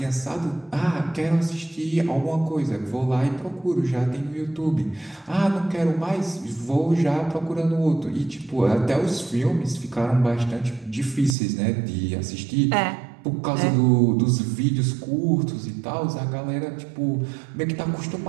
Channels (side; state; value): left; drops out; at 11.4 s